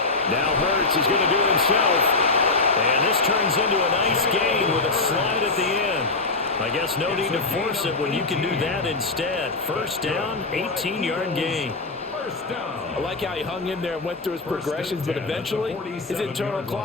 Now Hurts is going to do it himself. And this turns into a nice gain with a slide at the end. I guess no need to force it when you can do that instead. First down, 18-yard gain. I like how he hung in there and went through his progressions, but eventually his internal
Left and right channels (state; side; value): quieter; right; 3.6 dB